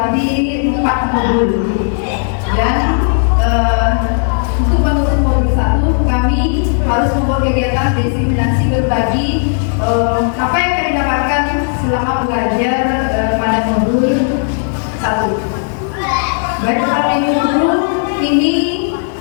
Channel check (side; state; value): right; silent; 64 dB below the other